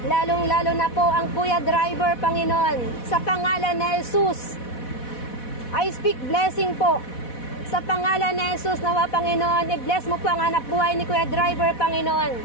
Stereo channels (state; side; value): late; right; 4.1 ms